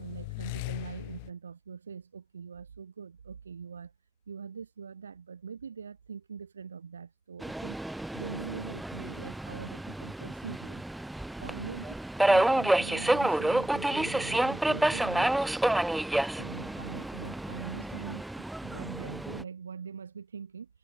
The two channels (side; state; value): both; normal; correlation 0.87